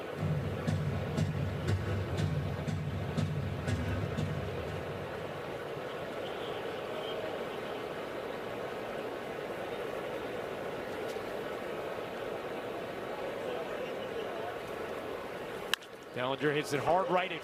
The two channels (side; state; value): both; identical; correlation 1.00